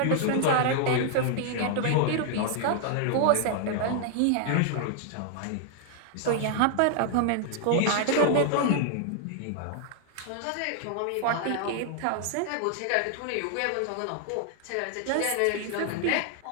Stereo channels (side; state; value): both; different; correlation 0.00